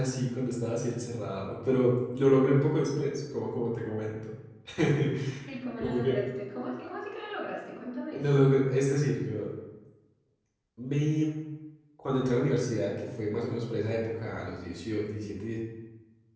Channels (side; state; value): both; identical; correlation 1.00